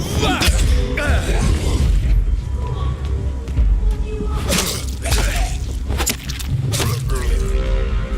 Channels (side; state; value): both; identical; correlation 1.00